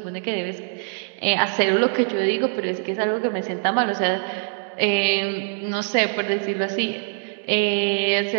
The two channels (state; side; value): silent; left; digital silence